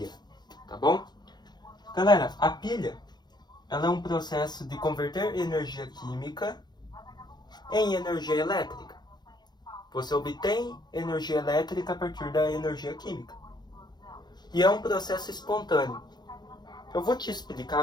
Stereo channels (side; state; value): right; late; 0.21 ms